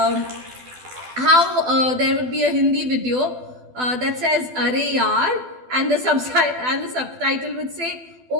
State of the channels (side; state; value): left; late; 12 ms